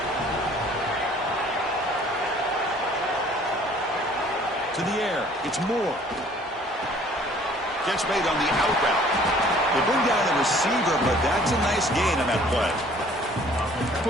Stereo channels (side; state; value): both; normal; correlation 0.55